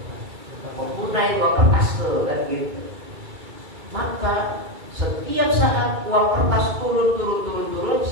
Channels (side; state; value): left; late; 2.3 ms